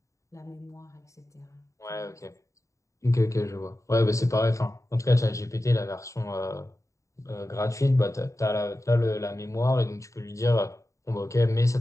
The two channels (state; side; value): late; right; 0.15 ms